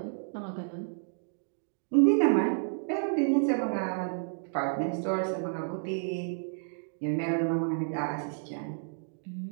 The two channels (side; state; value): left; silent; digital silence